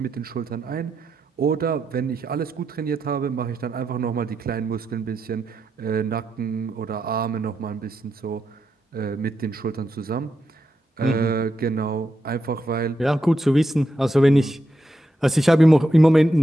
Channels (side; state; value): both; normal; correlation 0.84